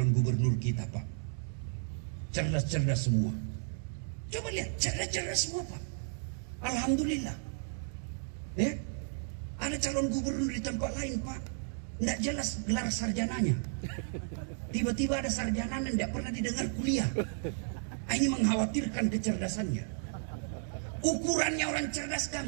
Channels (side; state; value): left; silent; digital silence